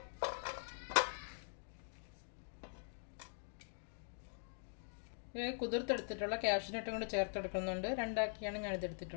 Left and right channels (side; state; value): right; silent; digital silence